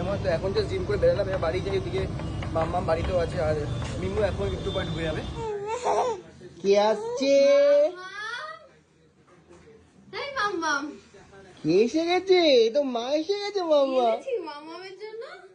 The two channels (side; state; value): both; identical; correlation 1.00